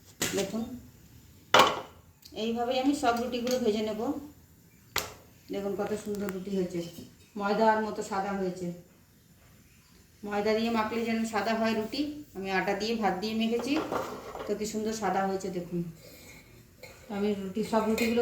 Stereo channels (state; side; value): identical; both; correlation 1.00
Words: দেখুন এইভাবেই আমি সব রুটিগুলো ভেজে নেব। দেখুন কত সুন্দর রুটি হয়েছে, ময়দার মতো সাদা হয়েছে। ময়দা দিয়ে মাখলে যেন সাদা হয় রুটি, আমি আটা দিয়ে ভাত দিয়ে মেখেছি, তো কি সুন্দর সাদা হয়েছে দেখুন। আমি সব রুটিগুলো